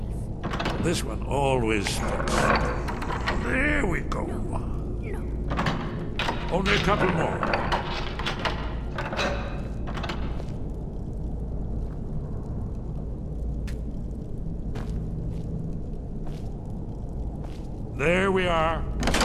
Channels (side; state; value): both; identical; correlation 1.00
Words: knife. This one always sticks. There we go. No. Only a couple more. There we are.